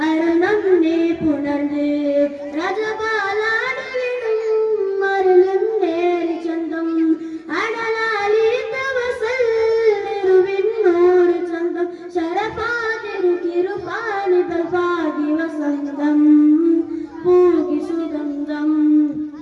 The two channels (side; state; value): both; identical; correlation 1.00